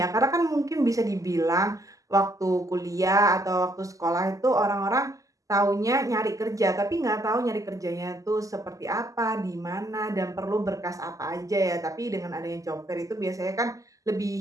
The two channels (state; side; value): late; left; 0.16 ms